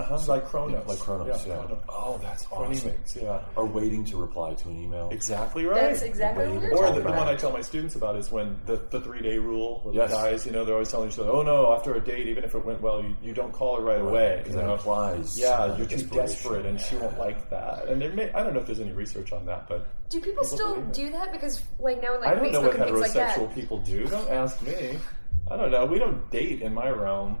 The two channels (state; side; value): inverted; both; correlation -1.00